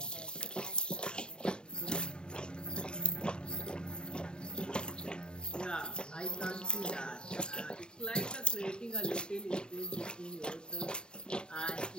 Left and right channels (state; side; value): late; right; 0.049 ms